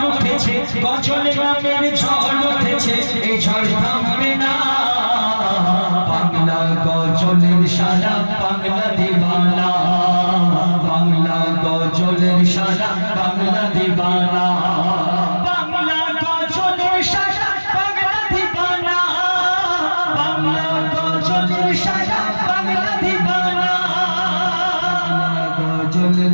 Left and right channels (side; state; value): both; inverted; correlation -1.00